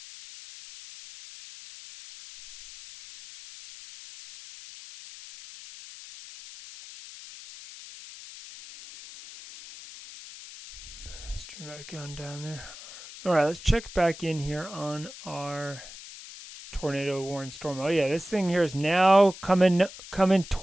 Dramatic going down there. All right, let's check back in here on our tornado warning storm. Oh yeah, this thing here is now coming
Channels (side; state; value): left; noise; hiss, 15 dB below the sound